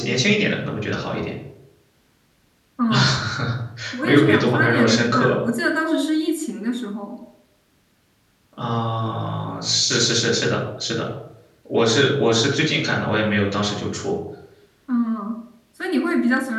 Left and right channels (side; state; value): both; identical; correlation 1.00